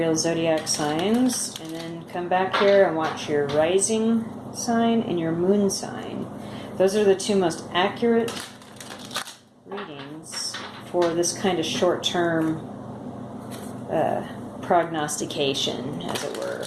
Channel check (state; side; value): identical; both; correlation 1.00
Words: zodiac signs, and then come back here and watch your rising sign and your moon sign. Those are the two most accurate readings for this kind of short-term prognostication, as it were.